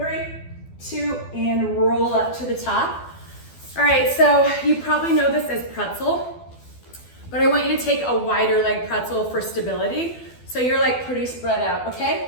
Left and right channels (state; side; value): late; right; 12 ms